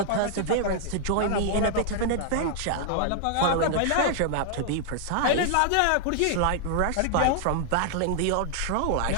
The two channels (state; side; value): different; both; correlation 0.00